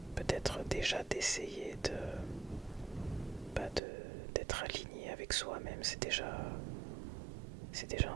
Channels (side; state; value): left; drops out; at 3.8 s